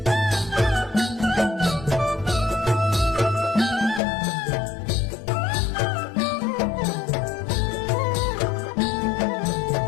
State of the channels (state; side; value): drops out; right; at 4.0 s